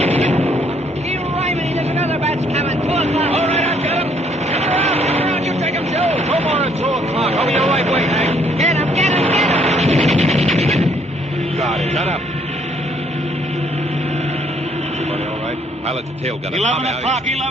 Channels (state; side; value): normal; both; correlation 0.66